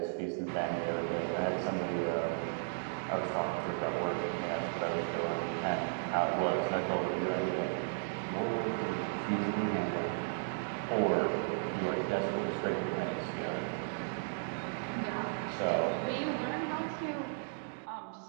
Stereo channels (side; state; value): left; silent; digital silence